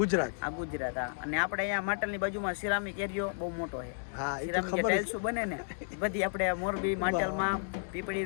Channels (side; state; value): right; silent; digital silence